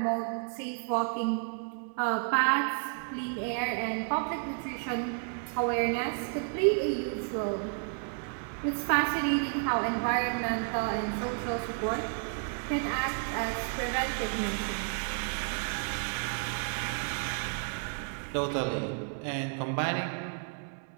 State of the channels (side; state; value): left; silent; 57 dB below the other